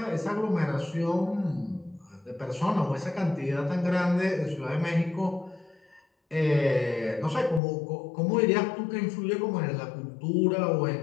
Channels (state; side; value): drops out; right; at 7.6 s